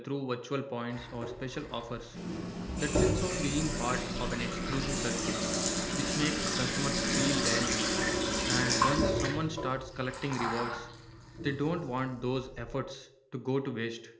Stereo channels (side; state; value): both; identical; correlation 1.00